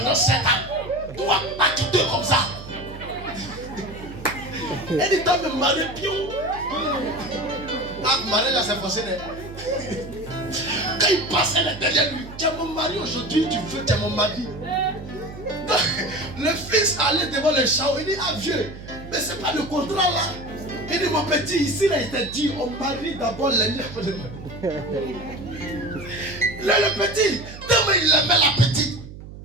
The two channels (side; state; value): right; noise; hum, 14 dB below the sound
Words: 7 ans. Toi pas quitté comme ça. Elle dit toi me marier pion. Ah, Marie là c'est forcé. Quand il passe, elle est derrière lui. Tu es mon mari aujourd'hui, tu veux, tu es mon mari. Le fils allait devant le char, il dit ah vieux, mais c'est pas le contrat là. Il dit mon petit, ici là il t'a dit, on marie d'abord l'ennemi après le mari. Le petit, tellement il aimait la petite.